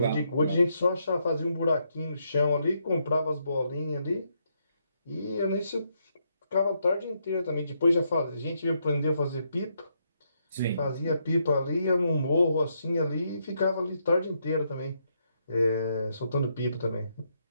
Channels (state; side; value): inverted; both; correlation -0.77